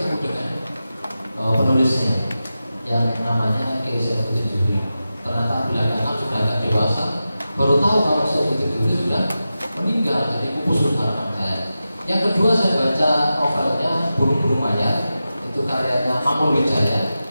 dengan penulisnya yang namanya Kiai Saifuddin Zuhri. Ternyata belakangan sudah agak dewasa, baru tahu kalau Saifuddin Zuhri sudah meninggal, jadi pupus harapan saya. Yang kedua saya baca novelnya Burung-Burung Mayat, itu karyanya Manul Wijaya.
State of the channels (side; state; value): both; inverted; correlation -0.93